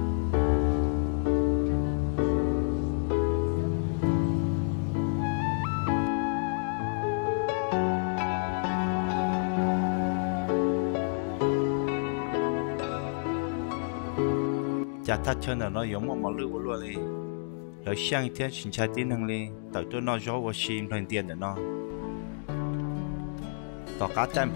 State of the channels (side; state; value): right; silent; digital silence